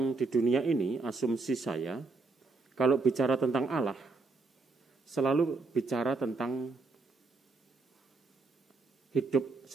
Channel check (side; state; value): left; quieter; 3.7 dB